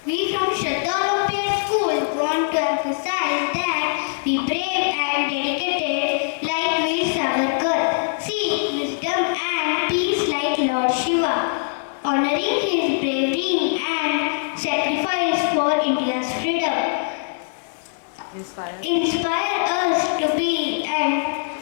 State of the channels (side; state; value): right; silent; digital silence